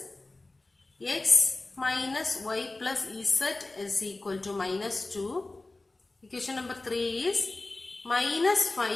X minus y plus z is equal to minus 2. Equation number 3 is minus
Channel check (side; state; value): right; quieter; 3.1 dB